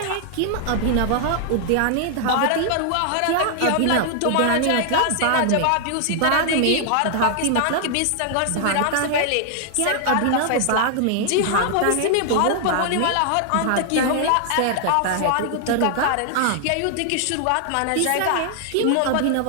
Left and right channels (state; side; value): different; both; correlation 0.00